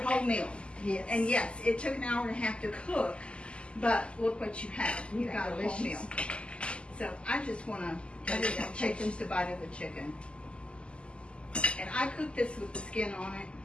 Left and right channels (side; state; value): right; late; 0.053 ms